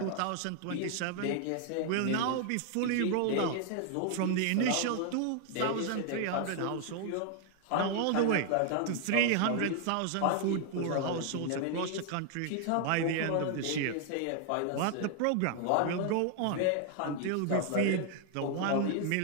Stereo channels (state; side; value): different; both; correlation 0.00